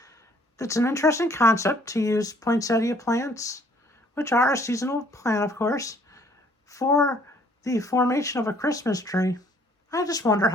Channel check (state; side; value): normal; both; correlation 0.60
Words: It's an interesting concept to use poinsettia plants, which are a seasonal plant, of course, for the formation of a Christmas tree. I just wonder